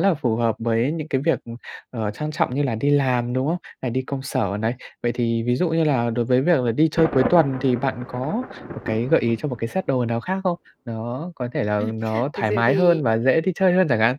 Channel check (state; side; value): identical; both; correlation 1.00